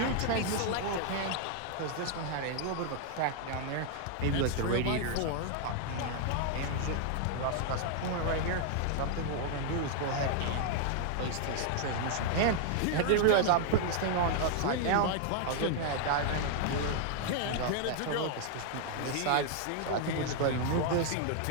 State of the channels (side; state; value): both; different; correlation 0.00